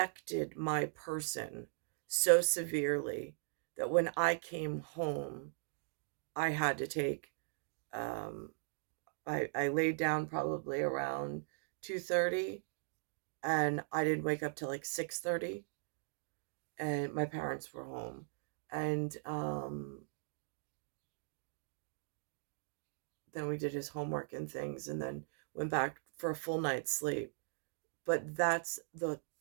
my person so severely that when I came home, I had to take, um, I laid down probably around 2:30, and I didn't wake up till like 6:30, and my parents were home. And then we did his homework and things, and then went back for a full night's sleep. But that's the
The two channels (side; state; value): left; silent; digital silence